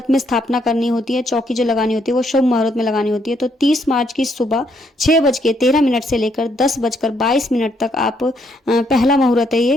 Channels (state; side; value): normal; both; correlation 0.72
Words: में स्थापना करनी होती है। चौकी जो लगानी होती है वो शुभ मुहूर्त में लगानी होती है। तो 30 मार्च की सुबह 6:13 से लेकर 10:22 तक आप पहला मुहूर्त है